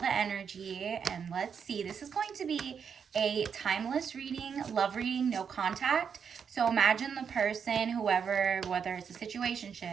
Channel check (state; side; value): quieter; left; 6.9 dB